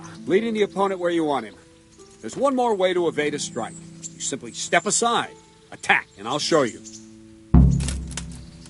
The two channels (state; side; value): identical; both; correlation 1.00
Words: leading the opponent where you want him. There's one more way to evade a strike. You simply step aside, attack, and I'll show you.